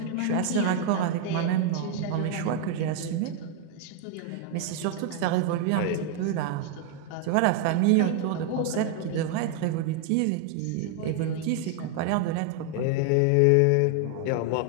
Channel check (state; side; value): different; both; correlation 0.00